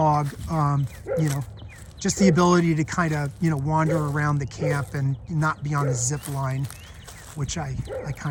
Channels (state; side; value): identical; both; correlation 1.00